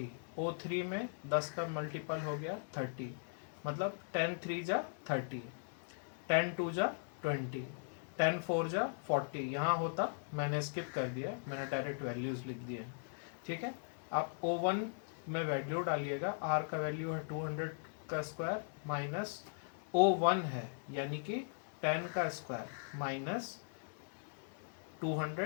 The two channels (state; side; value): silent; right; digital silence